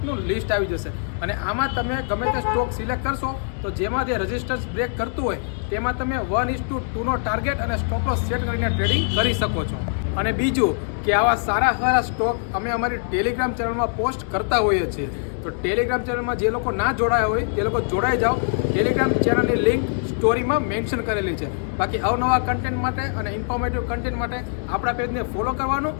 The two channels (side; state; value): right; silent; digital silence